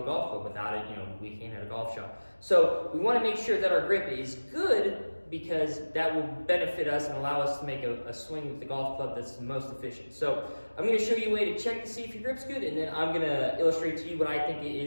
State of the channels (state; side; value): inverted; both; correlation -1.00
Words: golf club. Without it, we can't hit a golf shot. So we want to make sure that our grip is good, because that will benefit us and allow us to make a swing with the golf club that's the most efficient. So I'm going to show you a way to check to see if your grip's good, and then I'm going to illustrate to you what I think